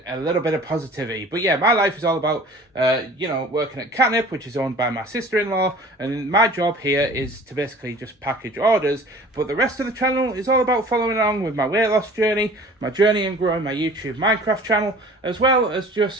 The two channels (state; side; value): normal; both; correlation 0.46